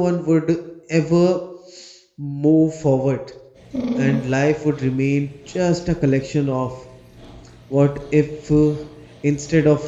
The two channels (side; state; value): both; identical; correlation 1.00